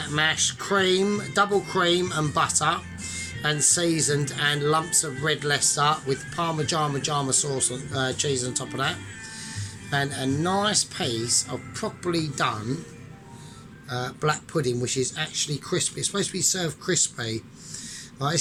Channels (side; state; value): both; identical; correlation 1.00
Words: mash, cream, double cream and butter, and seasoned, and lumps of red Leicester with Parmigiano sauce on, cheese on top of that, and a nice piece of properly done black pudding, which is actually crispy. It's supposed to be served crispy. Right,